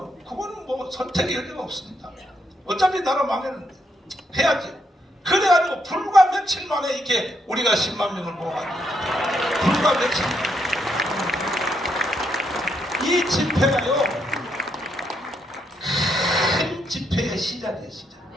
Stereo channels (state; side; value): normal; both; correlation 0.77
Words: 그거는 뭐 선택의 여지가 없습니다. 어차피 나라 망했는데 해야지. 그래가지고 불과 며칠 만에 이렇게 우리가 10만 명을 모아가지고 불과 며칠 만에 이 집회가요 큰 집회의 시작이에요. 시작.